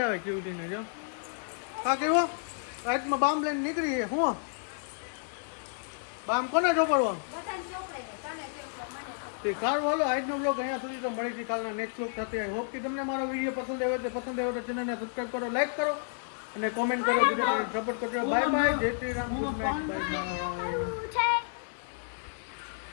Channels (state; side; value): silent; right; digital silence